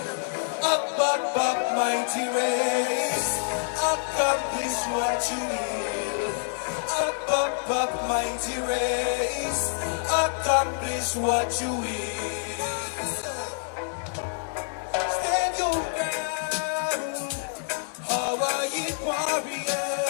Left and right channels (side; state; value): right; silent; digital silence